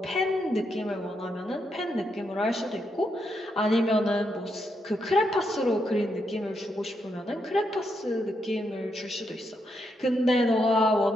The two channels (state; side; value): normal; both; correlation 0.80